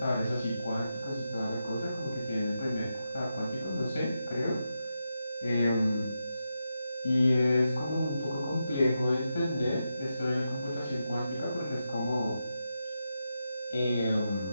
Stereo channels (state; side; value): inverted; both; correlation -0.87